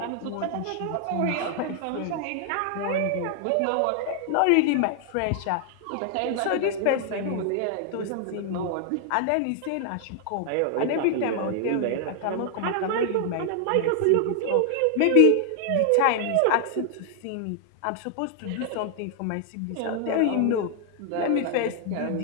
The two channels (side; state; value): both; different; correlation 0.00